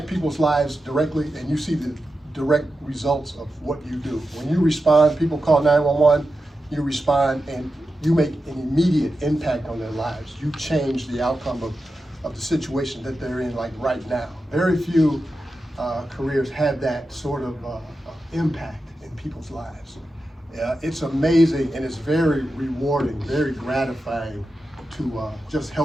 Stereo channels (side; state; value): both; normal; correlation 0.91